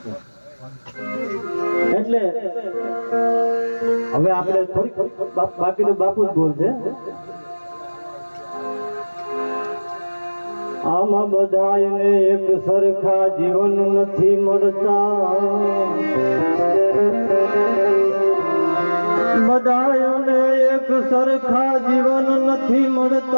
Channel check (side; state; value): both; inverted; correlation -1.00